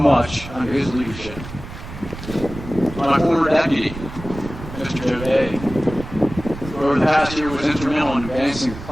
under his leadership. My former deputy, Mr. Joe Day, who over the past year was instrumental in advancing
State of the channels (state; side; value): noise; right; rumble, 12 dB below the sound